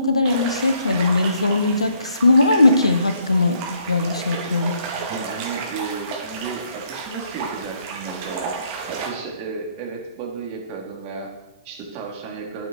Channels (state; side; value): inverted; both; correlation -0.68